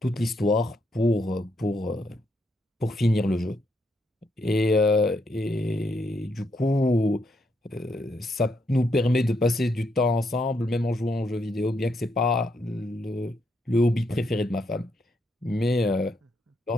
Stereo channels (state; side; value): normal; both; correlation 0.77